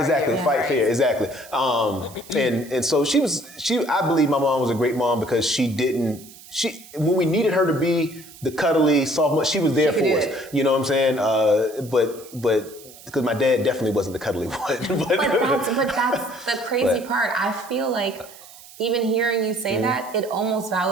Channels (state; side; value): noise; right; hiss, 20 dB below the sound